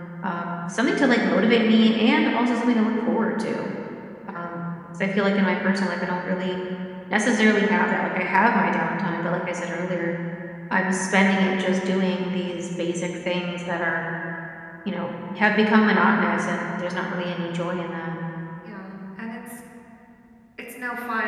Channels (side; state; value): both; identical; correlation 1.00